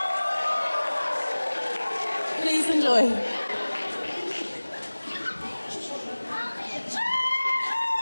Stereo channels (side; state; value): both; inverted; correlation -1.00